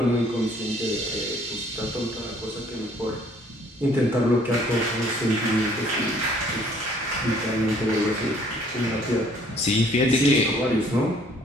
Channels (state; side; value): normal; both; correlation 0.60